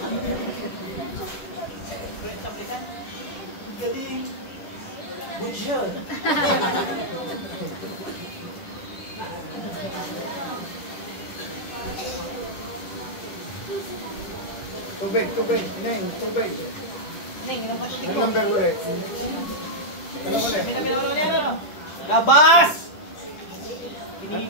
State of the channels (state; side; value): late; right; 10 ms